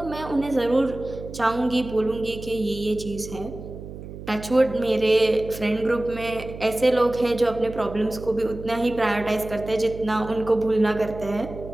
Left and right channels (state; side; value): noise; right; hum, 12 dB below the sound